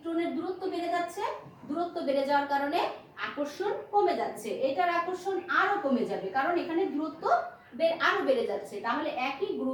দূরত্ব বেড়ে যাচ্ছে, দূরত্ব বেড়ে যাওয়ার কারণে আকর্ষণ কমে যাচ্ছে, এটার আকর্ষণ আরো কমে যাবে কারণ এখানে দূরত্ব আরো বেড়ে যাচ্ছে। তাহলে একই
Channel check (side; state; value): both; identical; correlation 1.00